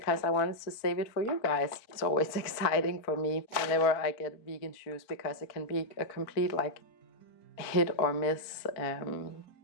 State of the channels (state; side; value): late; right; 4.4 ms